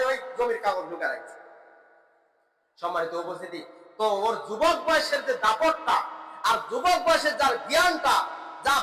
ওই জমির কাগজ ঢুকে রাখছে। সম্মানিত উপস্থিতি, তো ওর যুবক বয়সের যে দাপটটা, আর যুবক বয়সের যার জ্ঞানটা, যা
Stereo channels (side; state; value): both; identical; correlation 1.00